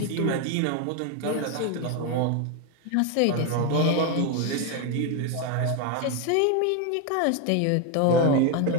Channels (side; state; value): both; different; correlation 0.02